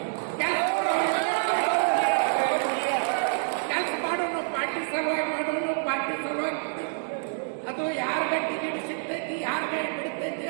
ಅದು ಯಾರಿಗೆ ಟಿಕೆಟ್ ಸಿಗ್ತೈತಿ, ಯಾರಿಗೆ ಬಿಡ್ತೈತಿ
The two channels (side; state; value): left; silent; 60 dB below the other